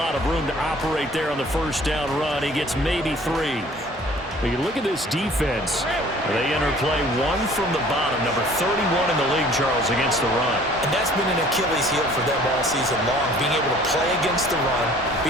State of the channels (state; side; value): normal; both; correlation 0.52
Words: of room to operate there on the first down run. He gets maybe 3. But you look at this defense. They enter play 1 from the bottom, number 31 in the league, Charles, against the run. And that's been an Achilles heel for them all season long, being able to play against the run,